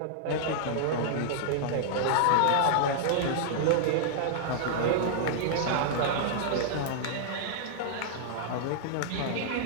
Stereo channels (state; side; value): different; both; correlation -0.01